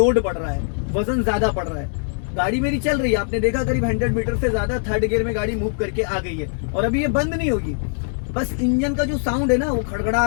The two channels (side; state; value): right; silent; digital silence